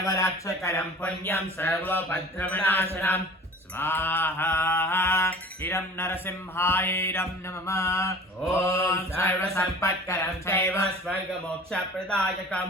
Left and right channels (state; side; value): normal; both; correlation 0.43